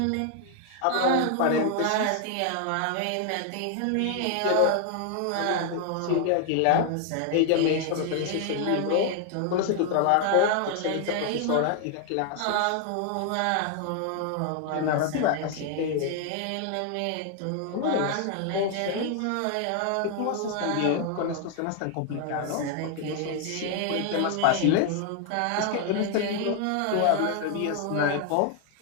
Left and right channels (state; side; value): different; both; correlation 0.00